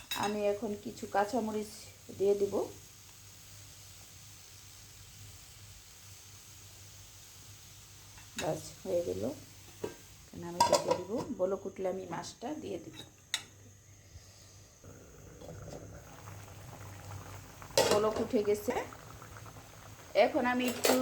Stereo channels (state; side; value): identical; both; correlation 1.00